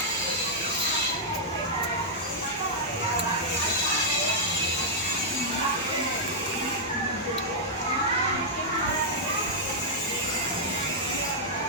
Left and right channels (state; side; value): normal; both; correlation -0.07